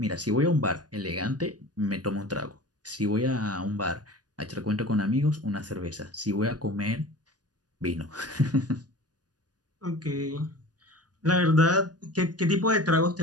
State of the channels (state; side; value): late; left; 0.69 ms